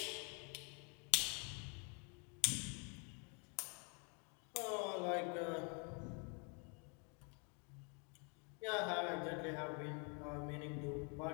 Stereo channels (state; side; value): quieter; right; 36.6 dB